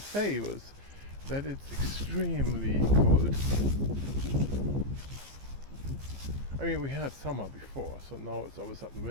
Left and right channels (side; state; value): left; late; 15 ms